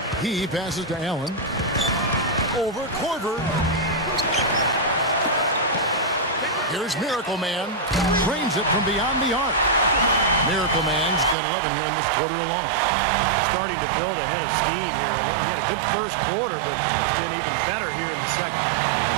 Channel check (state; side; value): drops out; left; at 11.4 s